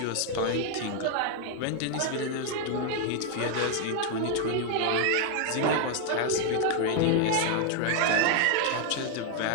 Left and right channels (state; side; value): different; both; correlation 0.00